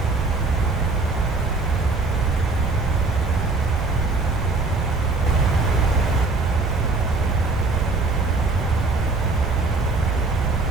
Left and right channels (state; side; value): quieter; left; 3.6 dB